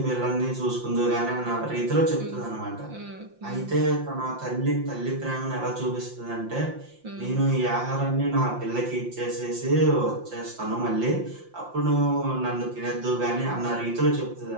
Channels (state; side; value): late; left; 5.7 ms